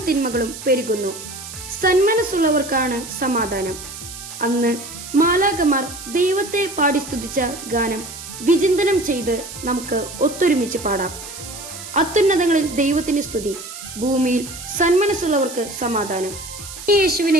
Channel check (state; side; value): noise; right; hiss, 12 dB below the sound